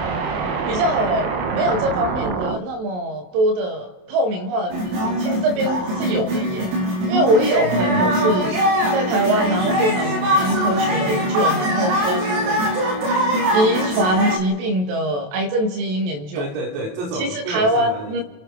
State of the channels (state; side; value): late; left; 27 ms